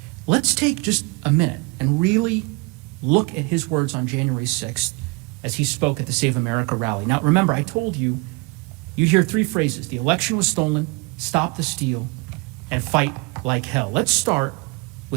Let's take just a minute and really look at his words on January 6th as he spoke at the Save America rally. Now, remember, I told you, you'd hear 3 phrases: the election was stolen, stop the steal, and fight like hell. Let's start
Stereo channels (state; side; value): quieter; left; 27.8 dB